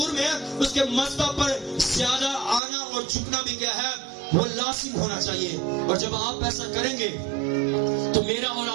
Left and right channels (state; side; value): drops out; left; at 2.6 s